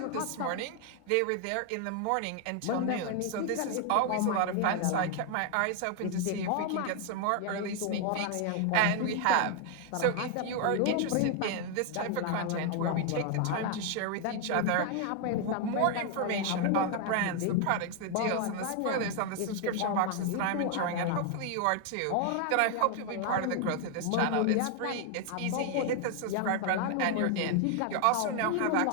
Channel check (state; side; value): different; both; correlation 0.00